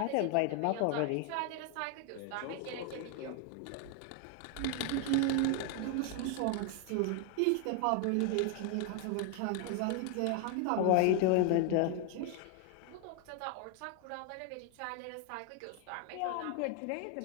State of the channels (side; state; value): both; different; correlation 0.00